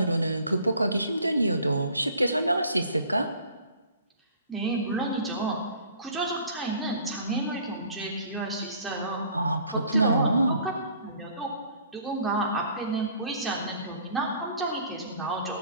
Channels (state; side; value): inverted; both; correlation -0.51